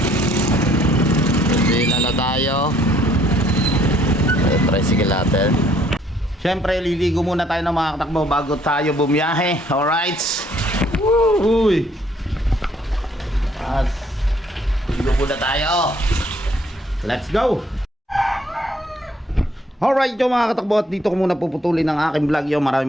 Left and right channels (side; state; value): both; normal; correlation 0.64